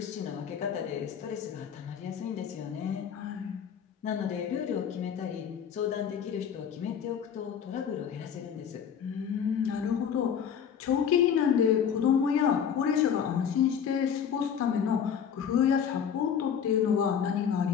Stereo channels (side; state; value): right; quieter; 7.9 dB